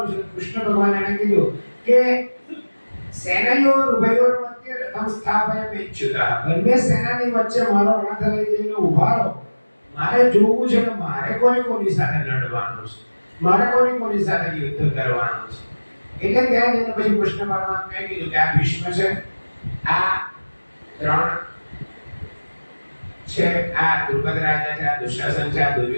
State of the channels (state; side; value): inverted; both; correlation -1.00